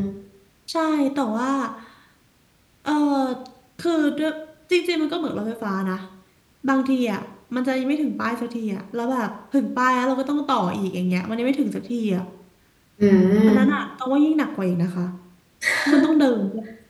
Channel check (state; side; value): identical; both; correlation 1.00